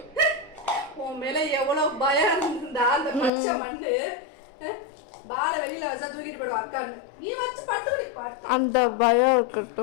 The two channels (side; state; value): right; drops out; at 3.3 s